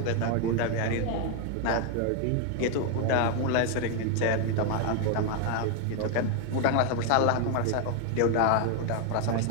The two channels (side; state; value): both; different; correlation 0.01